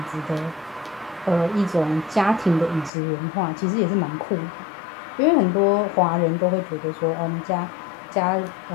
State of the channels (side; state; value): right; drops out; at 2.9 s